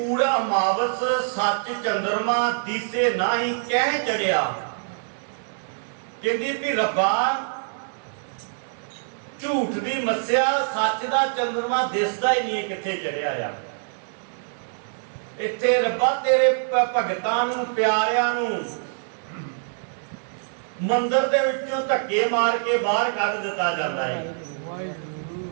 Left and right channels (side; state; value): left; silent; digital silence